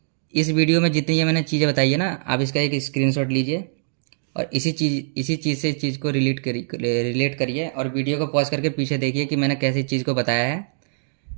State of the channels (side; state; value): left; silent; digital silence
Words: इस वीडियो में जितनी ये मैंने चीज़ें बताई है ना, आप इसका एक स्क्रीनशॉट लीजिए और इसी चीज़ से इस चीज़ को रिलेट करिए और वीडियो को पॉज करके पीछे देखिए कि मैंने कैसी चीज़ को बताया है।